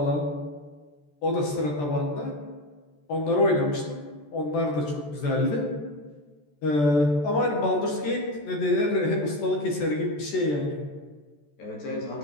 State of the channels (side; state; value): right; late; 14 ms